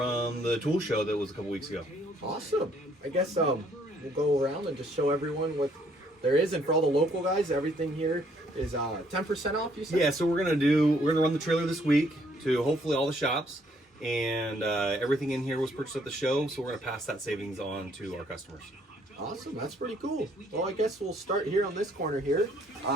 the tool show that was a couple weeks ago. Awesome. I guess we'll go around and just show everyone what there is, and for all the local guys, everything here is 10% off. You said? Yeah. So we're gonna run the trailer this week to hopefully all the shops, and everything in here was purchased at the show, so we're gonna pass that savings on to our customers. Awesome, that's pretty cool. Well, I guess we'll start here on this corner here.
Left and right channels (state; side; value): normal; both; correlation 0.66